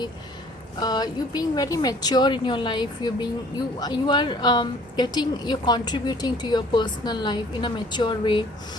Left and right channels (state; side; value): normal; both; correlation 0.54